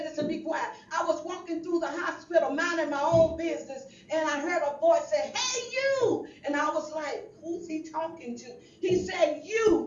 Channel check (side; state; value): both; identical; correlation 1.00